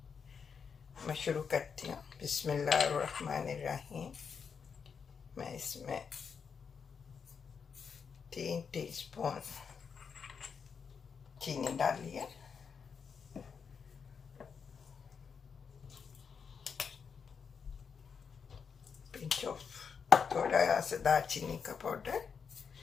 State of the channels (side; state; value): right; quieter; 6.3 dB